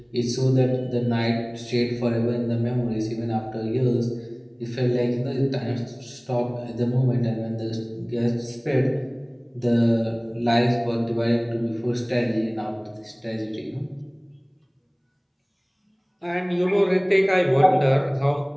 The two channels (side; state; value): both; identical; correlation 1.00